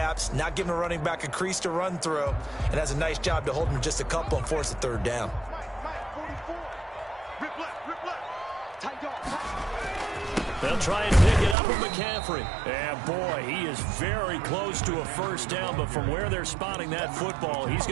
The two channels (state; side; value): drops out; left; at 11.6 s